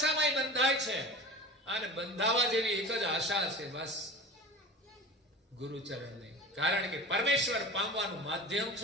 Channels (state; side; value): normal; both; correlation 0.35